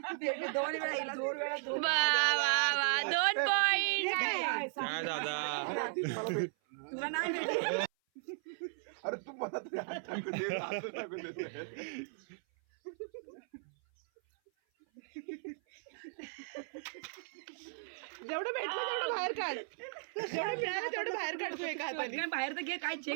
वा वा वा, 2 पॉइंट. तुला नाही भेटली. अरे तू मला तरी हात टाकू दे, हात टाकू दे. जेवढं भेटलं तेवढं बाहेर काढ, जेवढं मिळालं तेवढं बाहेर काढतो एका हाताने. बाहेर तर घे, काय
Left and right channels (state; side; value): silent; left; 53 dB below the other